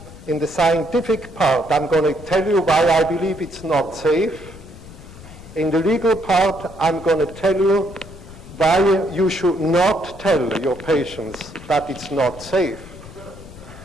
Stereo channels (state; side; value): noise; left; rumble, 17 dB below the sound